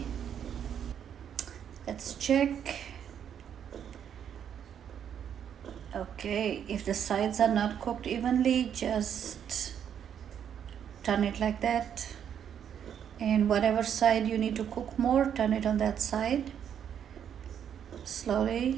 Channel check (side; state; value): left; quieter; 8.8 dB